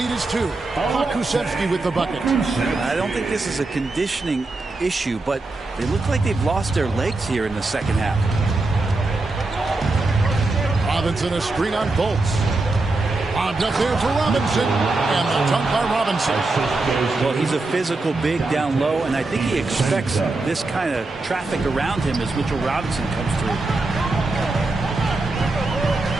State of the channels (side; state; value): left; quieter; 3.3 dB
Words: is 2. Pokusevski with the bucket. I don't think this is a conditioning issue, but they look like they've lost their legs here in the second half. Robinson a screen on Fultz. Popped up there for Robinson, and the dunk by Robinson. Well, he's a physical big down low, and I think he expects this kind of traffic around him as Mitchell Robinson comes through.